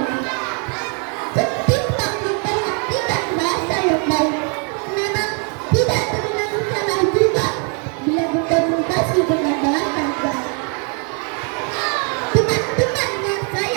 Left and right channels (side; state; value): left; quieter; 38.7 dB